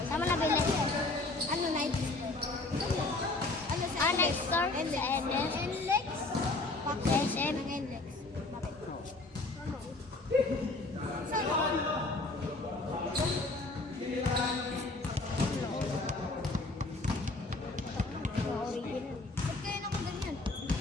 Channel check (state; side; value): quieter; right; 3.1 dB